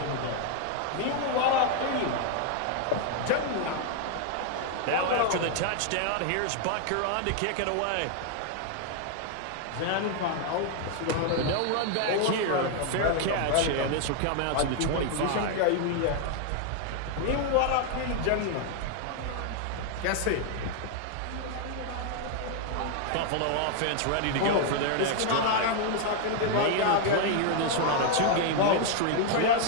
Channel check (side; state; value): both; different; correlation 0.00